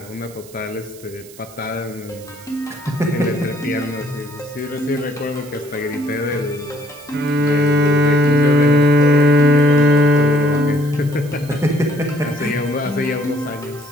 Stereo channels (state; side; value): noise; right; hiss, 21 dB below the sound